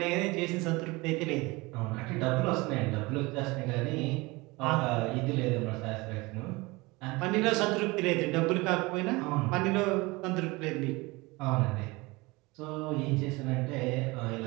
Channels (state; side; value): quieter; left; 23.5 dB